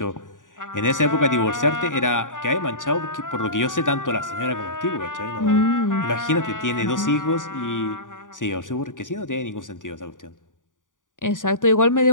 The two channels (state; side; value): late; right; 0.88 ms